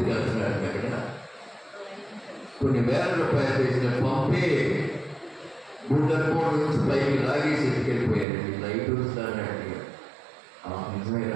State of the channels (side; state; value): left; drops out; at 8.2 s